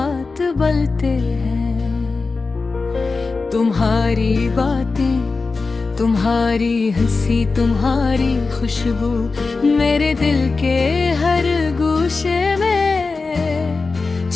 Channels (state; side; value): quieter; right; 4.1 dB